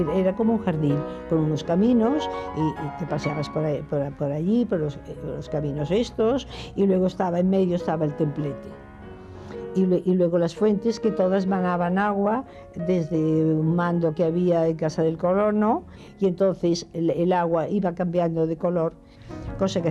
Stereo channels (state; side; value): identical; both; correlation 1.00